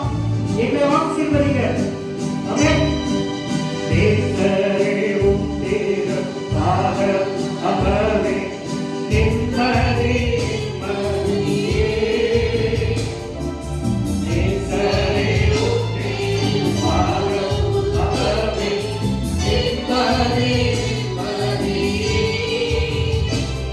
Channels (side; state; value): both; identical; correlation 1.00